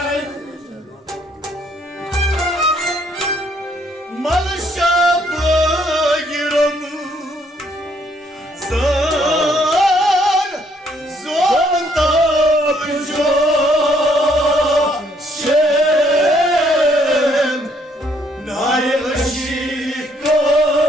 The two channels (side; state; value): both; normal; correlation 0.68